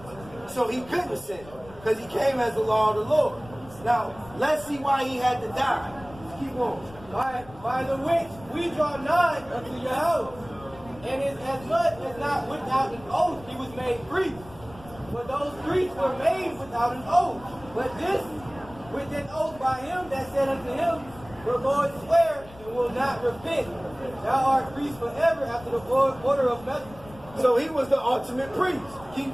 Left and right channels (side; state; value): left; noise; rumble, 20 dB below the sound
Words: So he couldn't sin, because he came as the law of the Lord. Now, let's see why he had to die. Keep on. By the which we draw nigh unto Yahweh, and is as much as not without an oath he was made priest. For those priests were made without an oath. But this with an oath by him that said unto him, the Lord swear and will not repent. Thou art priest forever after the order of Melchizedek. So he was the ultimate priest. Keep